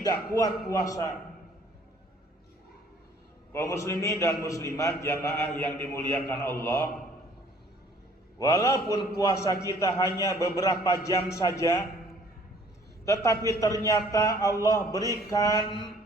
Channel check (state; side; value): normal; both; correlation 0.57